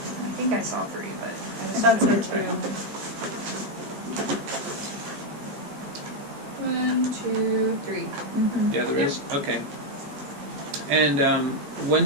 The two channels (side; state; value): left; late; 14 ms